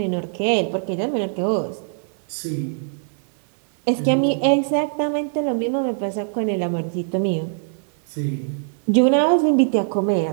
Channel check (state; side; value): silent; left; 60 dB below the other